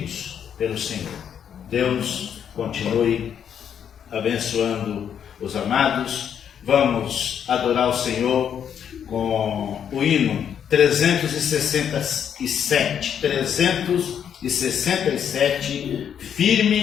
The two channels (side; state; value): right; quieter; 8.5 dB